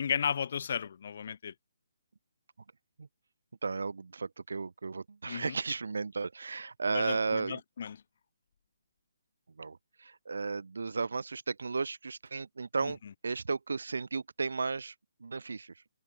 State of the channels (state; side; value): inverted; both; correlation -0.87